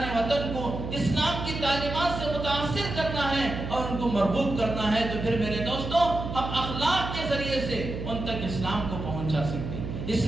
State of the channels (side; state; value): right; noise; hum, 6 dB below the sound